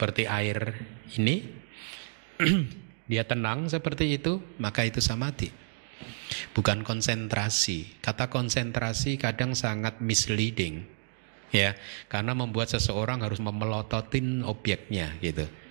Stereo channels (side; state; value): left; silent; digital silence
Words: air ini dia tenang seperti itu, maka itu samadhi. Bukan konsentrasi. Kata konsentrasi kadang sangat misleading. ya, karena membuat seseorang harus memelototin objeknya gitu,